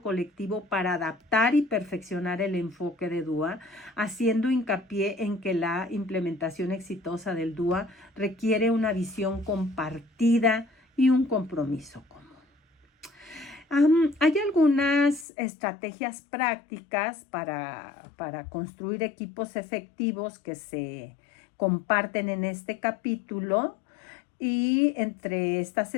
colectivo para adaptar y perfeccionar el enfoque de DUA, haciendo hincapié en que la implementación exitosa del DUA requiere una visión compartida y un compromiso común. Hay algunas estrategias prácticas para construir equipos efectivos que se comparten en este capítulo. Y entre estas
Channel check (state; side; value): drops out; right; at 15.2 s